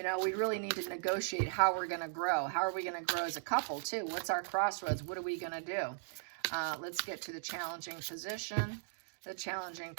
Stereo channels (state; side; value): silent; left; digital silence